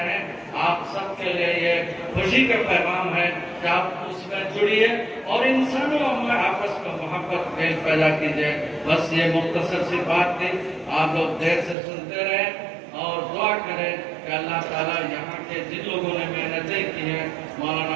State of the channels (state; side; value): drops out; left; at 11.8 s